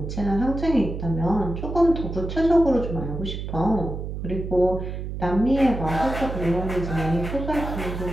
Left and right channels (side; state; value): right; noise; hum, 6 dB below the sound